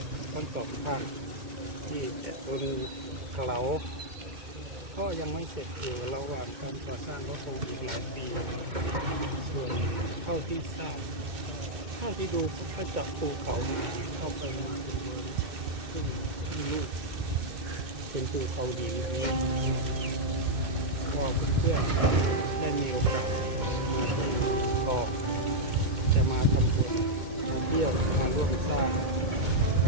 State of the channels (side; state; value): left; late; 2.2 ms